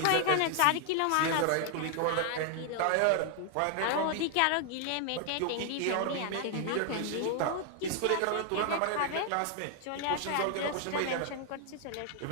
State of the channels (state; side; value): different; both; correlation 0.00